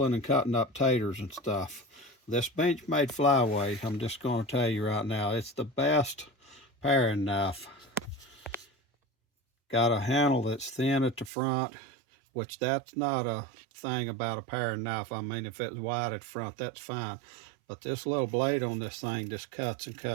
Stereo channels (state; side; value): drops out; left; at 11.3 s